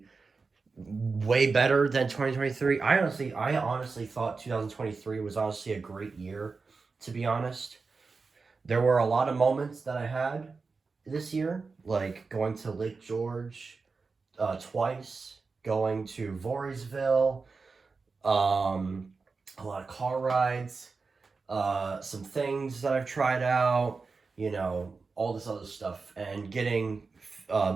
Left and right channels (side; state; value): left; quieter; 4.4 dB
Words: way better than 2023. I honestly thought 2023 was honestly a great year, to be honest. There were a lot of moments that I had this year, like going to Lake George twice, going to Voorheesville, a lot of car rides, some things that I've tried out, all this other stuff, and getting